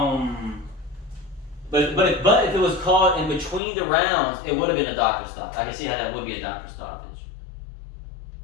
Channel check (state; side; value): drops out; right; at 3.6 s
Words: But if it was called in between the rounds, it would have been a doctor stop. I can see how that would be a doctor stoppage.